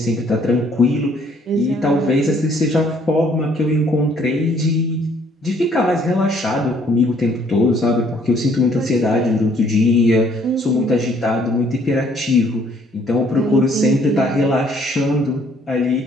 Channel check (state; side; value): normal; both; correlation 0.63